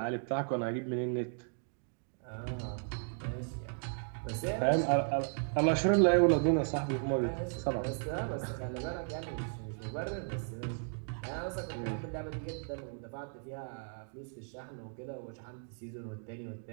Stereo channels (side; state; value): left; silent; 54 dB below the other